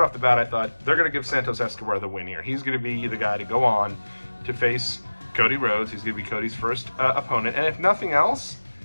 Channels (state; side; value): inverted; both; correlation -1.00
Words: off the bat, they're going to give Santos Escobar the win here. He's going to be the guy to go on to face Cody Rhodes. He's going to be Cody's first opponent, and if nothing else,